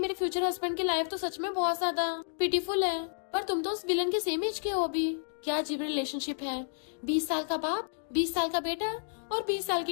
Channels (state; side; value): silent; right; digital silence